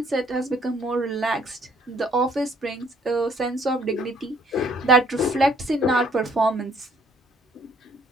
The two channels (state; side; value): normal; both; correlation 0.63